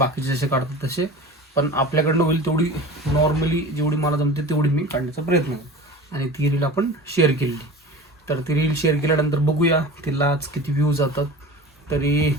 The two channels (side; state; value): both; normal; correlation 0.36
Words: जसे काढतात तसे, पण आपल्याकडनं होईल तेवढी नॉर्मली जेवढी मला जमते तेवढी मी काढण्याचा प्रयत्न केला आणि ती रील आपण शेअर केली. तर ती रील शेअर केल्यानंतर बघूया तिला आज किती व्ह्यूज जातात. तरी